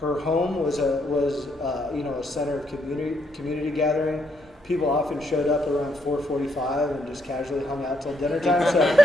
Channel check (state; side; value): normal; both; correlation 0.74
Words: her home was a center of community gathering. People often showed up around 4:45 and just casually hung out till dinner time. So,